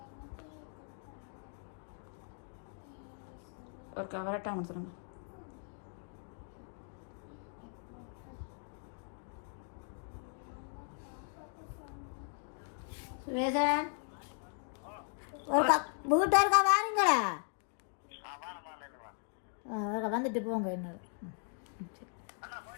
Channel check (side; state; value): right; silent; 52 dB below the other